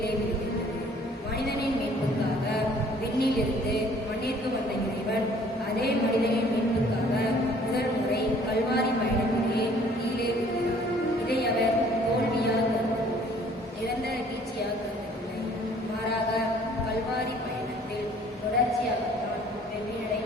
விழுகின்றது. மனிதனின் மீட்புக்காக விண்ணிலிருந்து மண்ணிற்கு வந்த இறைவன் அதே மனிதனின் மீட்புக்காக முதல் முறை கல்வாரி பயணத்திலே கீழே விழுகிறார். இதை அவர் தோல்வியாக கருதவில்லை, நிரந்தர வீழ்ச்சியாக கருதவில்லை. மாறாக கல்வாரி பயணத்தில் தொடர்ச்சியாகத்தான்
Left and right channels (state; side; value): normal; both; correlation 0.56